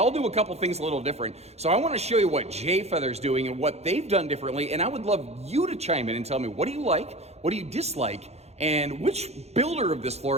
do a couple things a little different. So I want to show you what J Feather's doing and what they've done differently, and I would love you to chime in and tell me, what do you like, what do you dislike, and which builder of this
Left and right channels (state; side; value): late; left; 0.31 ms